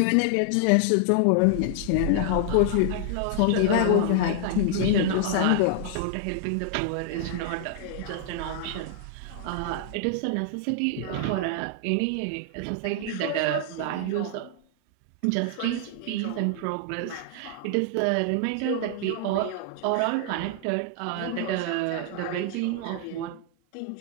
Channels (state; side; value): different; both; correlation 0.00